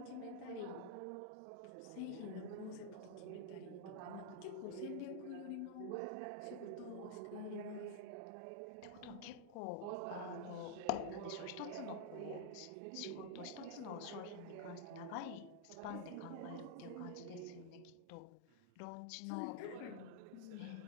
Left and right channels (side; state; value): both; different; correlation -0.01